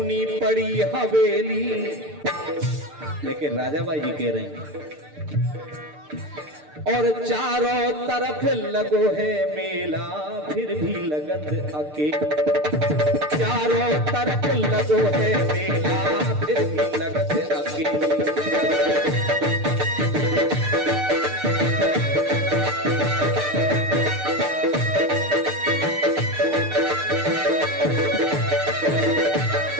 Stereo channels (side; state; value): left; late; 6.7 ms